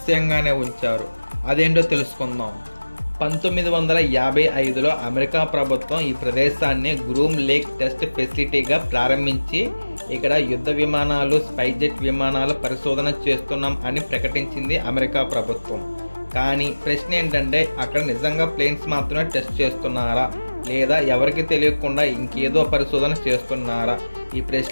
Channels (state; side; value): inverted; both; correlation -1.00